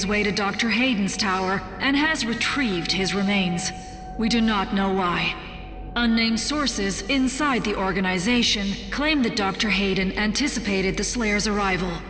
way to Dr. Hayden's tower and has retrieved his remains. We do not know why. Unnamed sources inside the organization claim that Dr. Hayden anticipated the Slayer's arrival.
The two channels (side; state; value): both; identical; correlation 1.00